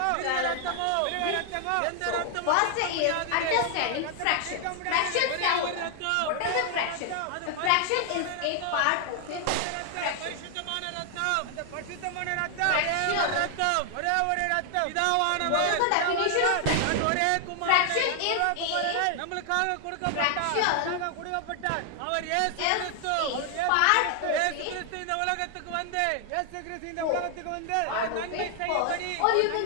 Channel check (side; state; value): both; different; correlation 0.00